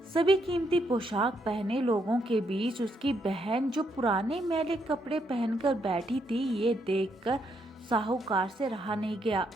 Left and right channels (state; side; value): normal; both; correlation 0.76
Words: सभी कीमती पोशाक पहने लोगों के बीच उसकी बहन जो पुराने मैले कपड़े पहनकर बैठी थी, ये देखकर साहूकार से रहा नहीं गया।